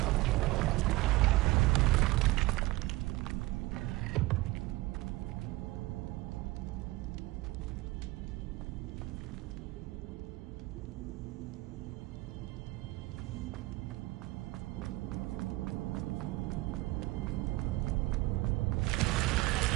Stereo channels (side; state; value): left; quieter; 19.8 dB